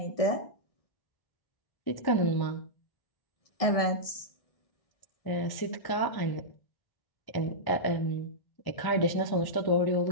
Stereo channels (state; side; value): late; right; 1.0 ms